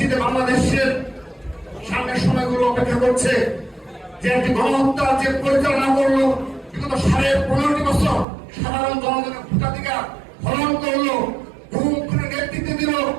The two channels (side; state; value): left; drops out; at 8.2 s